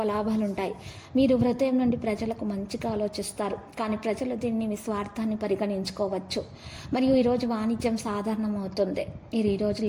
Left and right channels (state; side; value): identical; both; correlation 1.00